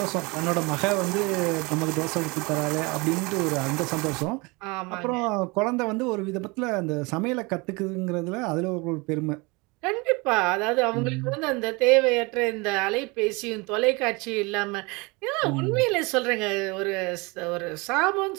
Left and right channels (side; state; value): left; quieter; 26.8 dB